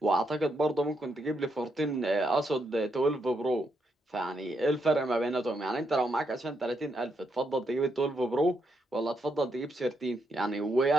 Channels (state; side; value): normal; both; correlation 0.79